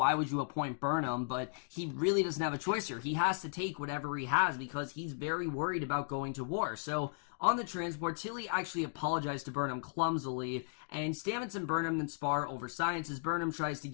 would you appoint Burnham? But he really doesn't have a choice here. He has to take whatever he has because he's very worried about going to war. So on the transport, Tilly actually apologized to Burnham clumsily, and Stamets and Burnham then spar over science as Burnham tries to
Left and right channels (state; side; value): silent; right; digital silence